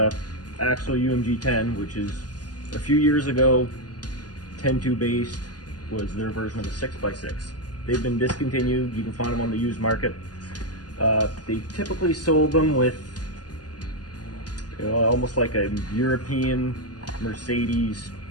Axel UMG 10, which is a few years ago, 10-2 based was their version of a 6x6. They've been discontinued. You can find them on the used market. They typically sold them with almost like a European Mercedes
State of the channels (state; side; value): late; right; 0.69 ms